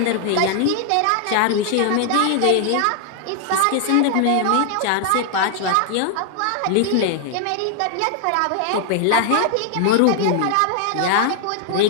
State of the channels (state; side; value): different; both; correlation 0.00